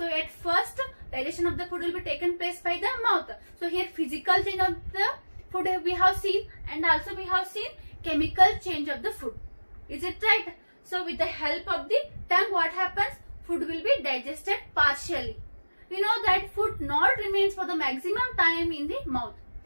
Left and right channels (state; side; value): inverted; both; correlation -1.00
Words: at first digestion of the food will be taken place by the mouth. So here physical change of the food we have seen and also we have seen chemical change of the food. Is it right? So with the help of the tongue what happens? Food will be digested partially. we know that food not remains for the maximum time in the mouth.